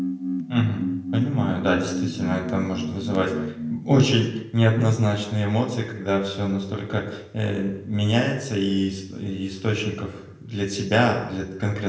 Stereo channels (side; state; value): both; identical; correlation 1.00